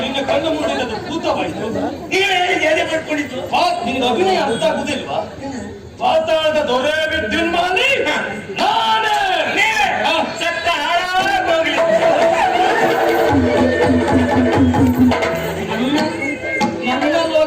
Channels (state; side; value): identical; both; correlation 1.00